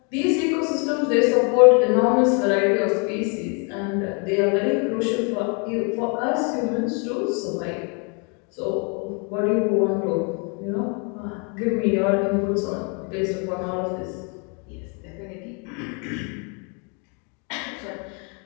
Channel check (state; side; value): quieter; right; 36.1 dB